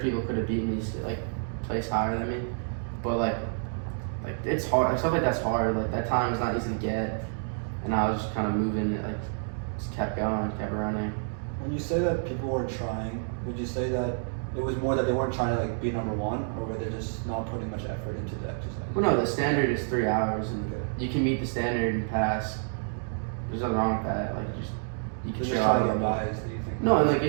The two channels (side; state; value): left; silent; digital silence